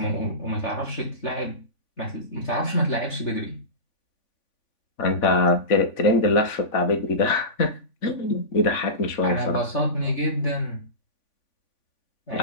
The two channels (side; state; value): right; late; 3.5 ms